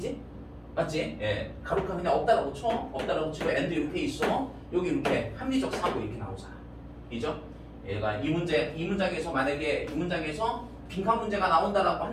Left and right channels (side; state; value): both; identical; correlation 1.00